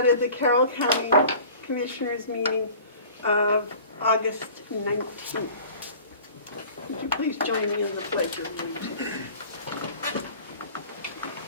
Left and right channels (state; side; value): inverted; both; correlation -0.45